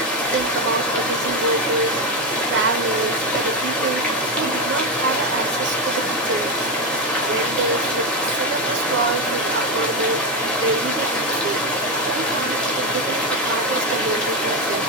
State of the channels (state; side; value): normal; both; correlation 0.11